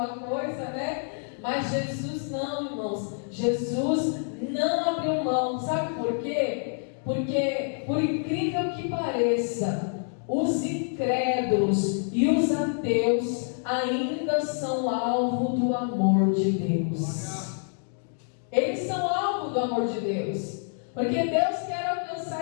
coisa, né? Mas Jesus não, irmãos. Jesus não abriu mão. Sabe por quê? Porque, por incrível que pareça, os incrédulos e os ateus ainda são alvo do amor de Deus. Eles são alvo do amor de Deus. Porque Deus quer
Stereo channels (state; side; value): silent; right; 60 dB below the other